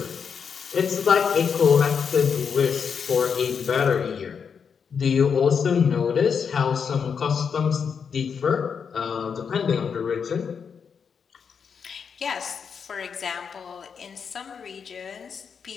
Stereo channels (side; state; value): right; quieter; 6.5 dB